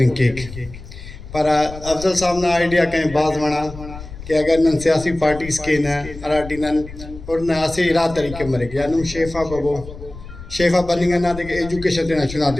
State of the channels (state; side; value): noise; left; rumble, 14 dB below the sound